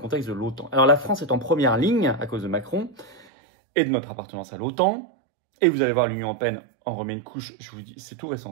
de l'OTAN. Alors la France est en première ligne à cause de Macron et de notre appartenance à l'OTAN. Et vous allez voir, l'Union européenne en remet une couche, je vous dis, c'est tout récent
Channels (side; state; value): left; drops out; at 3.2 s